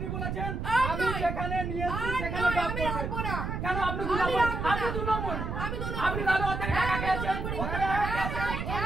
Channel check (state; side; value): noise; right; rumble, 3 dB below the sound